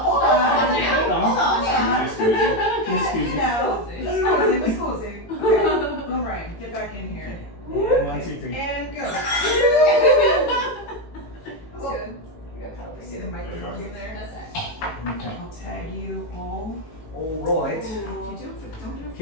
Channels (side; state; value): right; late; 18 ms